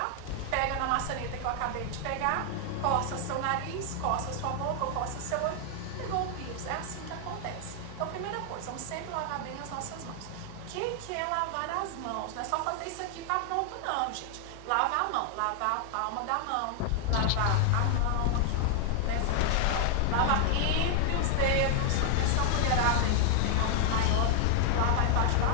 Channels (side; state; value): both; different; correlation 0.00